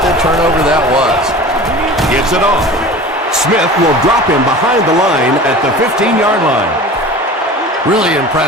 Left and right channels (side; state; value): both; normal; correlation 0.38